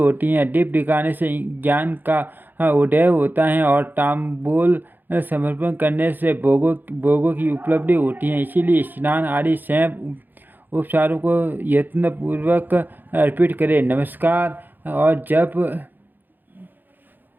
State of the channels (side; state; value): left; late; 0.089 ms